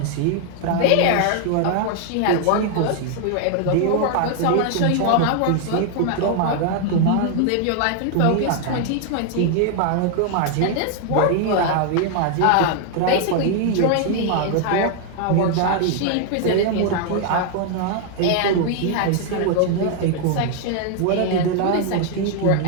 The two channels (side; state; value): both; different; correlation 0.00